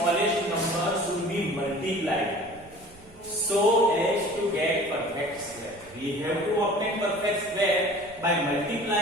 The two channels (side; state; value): right; noise; rumble, 25 dB below the sound